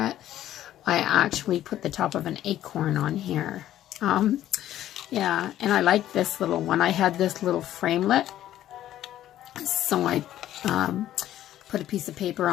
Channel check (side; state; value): right; quieter; 12.7 dB